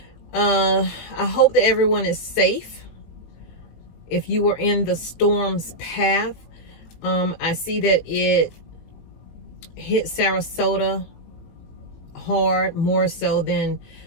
I hope that everyone is safe. If you were in the storm's path, I see that it hit Sarasota hard, more so than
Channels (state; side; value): late; right; 19 ms